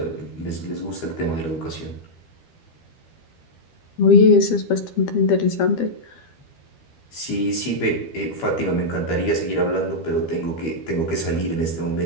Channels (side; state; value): right; late; 12 ms